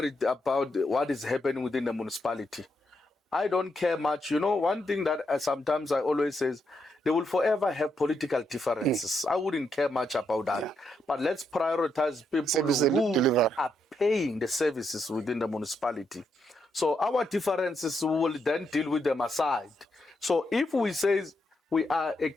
about what is happening within the municipality. I don't care much. You know, one thing that sometimes I always say is they will forever have political differences. I wouldn't care much about that. Yeah. But let's prioritize people who are paying the services within the municipality. So our differences, we will then deal with them aside. So if we say we are a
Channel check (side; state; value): both; normal; correlation 0.80